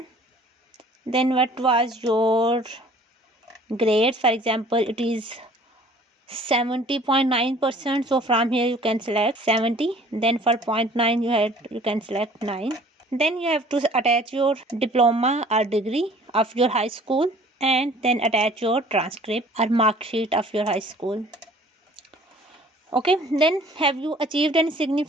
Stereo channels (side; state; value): both; normal; correlation 0.52